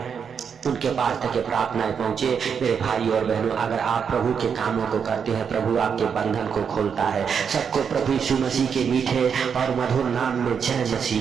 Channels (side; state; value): left; quieter; 6.8 dB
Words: उनके पास तक ये प्रार्थनाएं पहुंचे। मेरे भाई और बहनों अगर आप प्रभु के कामों को करते हैं प्रभु आपके बंधन को खोलता है। सबको प्रभु यीशु मसीह के मीठे और मधुर नाम में जय मसीह